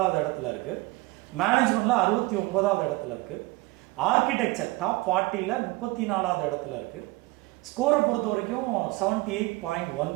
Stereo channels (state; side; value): quieter; left; 21.9 dB